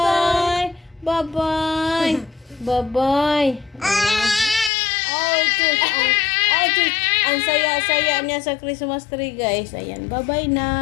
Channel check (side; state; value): right; drops out; at 4.7 s